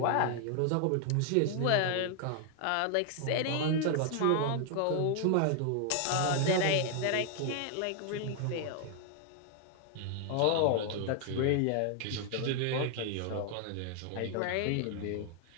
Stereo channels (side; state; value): both; different; correlation 0.00